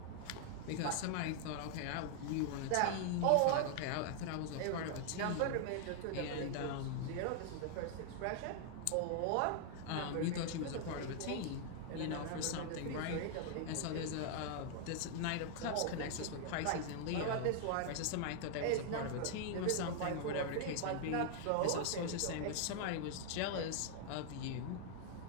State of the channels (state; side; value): different; both; correlation 0.00